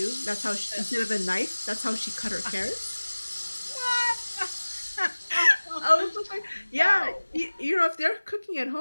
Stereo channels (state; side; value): inverted; both; correlation -1.00